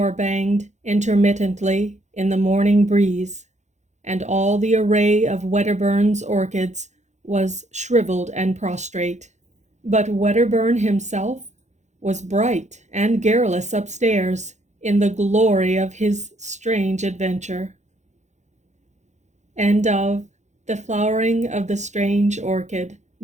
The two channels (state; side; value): late; left; 0.34 ms